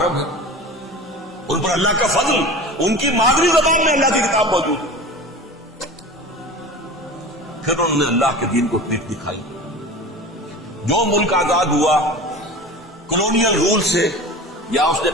ہے. ان پر اللہ کا فضل، ان کی مادری زبان میں اللہ کی کتاب موجود ہے. پھر انہوں نے اللہ کے دین کو پیٹ دکھائی. جو ملک آزاد ہوا کولونیل رول سے، یا اس نے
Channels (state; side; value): normal; both; correlation 0.35